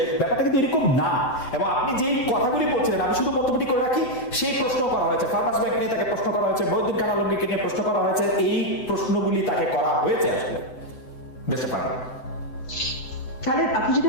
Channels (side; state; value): right; late; 7.9 ms